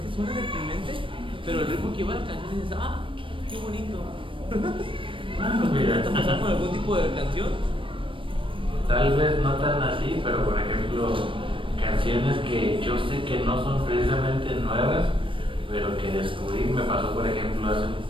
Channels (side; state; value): left; late; 0.25 ms